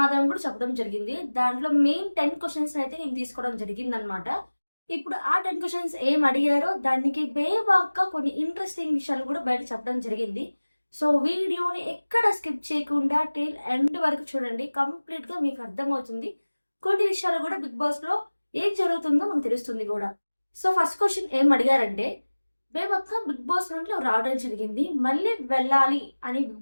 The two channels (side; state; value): both; inverted; correlation -1.00